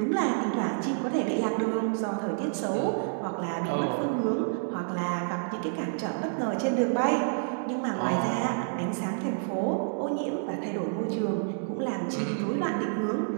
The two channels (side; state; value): left; silent; digital silence